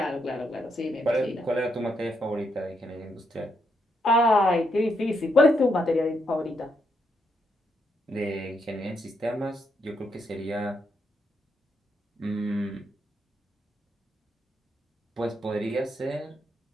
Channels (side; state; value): both; normal; correlation 0.78